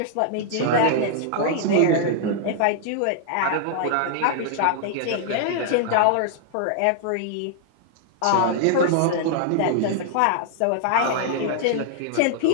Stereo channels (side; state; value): both; different; correlation -0.01